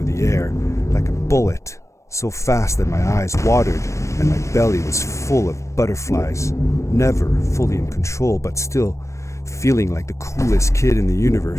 the air like a bullet, so fast that my eyes watered and my belly was full of butterflies. Never fully in control, but still feeling like the coolest kid in the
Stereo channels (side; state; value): right; late; 0.15 ms